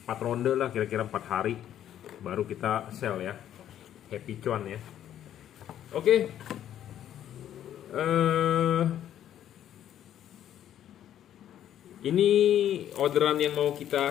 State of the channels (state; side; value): quieter; right; 10.9 dB